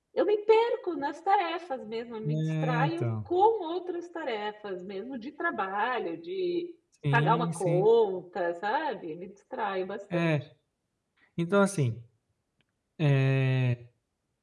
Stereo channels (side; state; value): both; identical; correlation 1.00